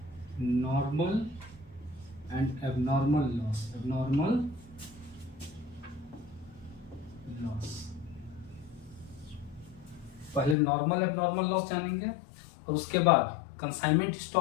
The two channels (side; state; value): right; drops out; at 10.6 s